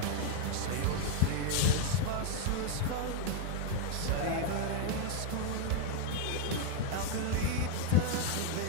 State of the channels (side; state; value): both; different; correlation 0.01